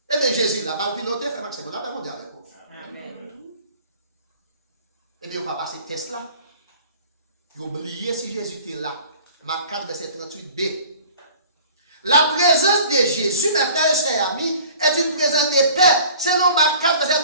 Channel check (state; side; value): inverted; both; correlation -0.48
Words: Eh bien Jésus là mal piloté fait maximum on a pas mondial avec vous. Amen. Eh bien, on va passer test là. Vous oubliez si Jésus était là. Marc 4, verset 38b. La présence de Jésus, mes frères et sœurs amis, est une présence de paix. Selon Marc 4, verset